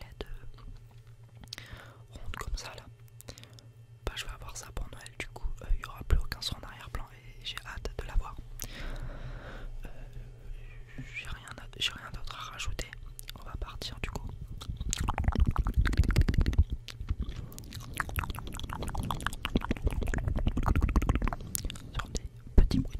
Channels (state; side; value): identical; both; correlation 1.00